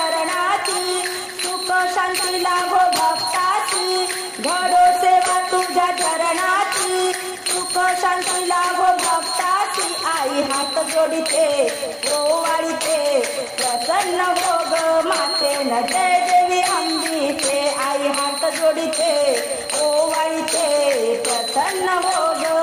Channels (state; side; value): identical; both; correlation 1.00